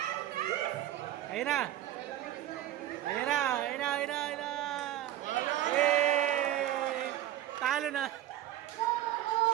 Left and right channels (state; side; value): quieter; left; 13.1 dB